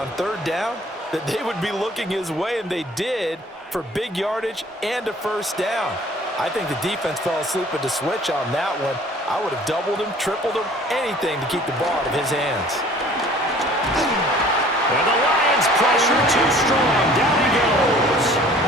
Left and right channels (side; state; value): both; normal; correlation 0.51